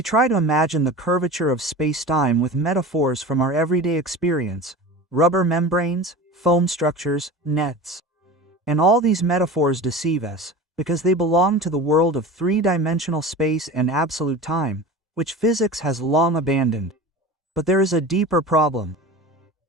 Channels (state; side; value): normal; both; correlation 0.33